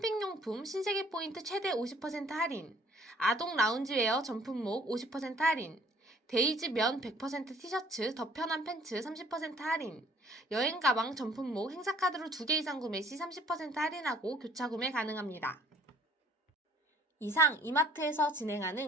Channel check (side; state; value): both; normal; correlation 0.57